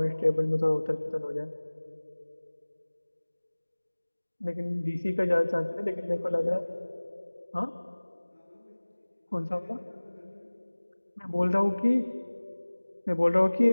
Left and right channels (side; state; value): both; inverted; correlation -1.00